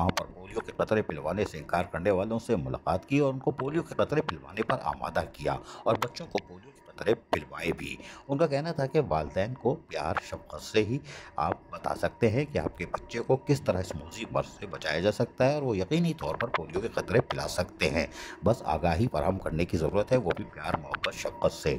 पर पोलियो के कतरे पिलवाने से इनकार करने वालों से मुलाकात की और उनको पोलियो के कतरे पिलवाने पर आमादा किया और बच्चों को पोलियो के कतरे पिलवाए भी। उनका कहना था कि वालिदैन को प्यार शफ़क़त से ही आप बता सकते हैं कि आपके बच्चे को किस तरह इस मुसीबत से बचाया जा सकता है और वो यकीनी तौर पर पोलियो के कतरे पिला सकते हैं। बस आगाही फराहम करने की ज़रूरत है, वो भी प्यार मोहब्बत शफ़क़त से।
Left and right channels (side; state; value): both; identical; correlation 1.00